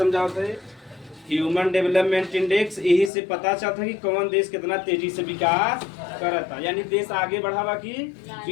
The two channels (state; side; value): drops out; right; at 3.1 s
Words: थे, ह्यूमन डेवलपमेंट इंडेक्स, यही से पता चलता है कि कौन देश कितना तेजी से विकास करता, यानी देश आगे बढ़ावा कि